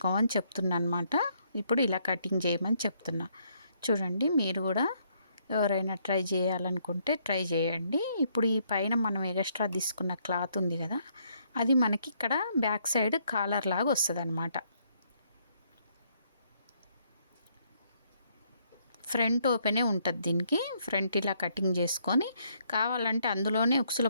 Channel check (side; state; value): both; inverted; correlation -0.71